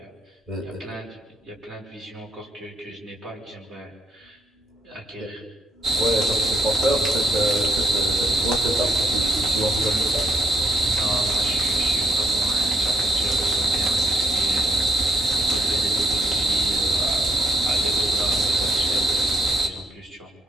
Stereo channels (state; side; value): normal; both; correlation 0.73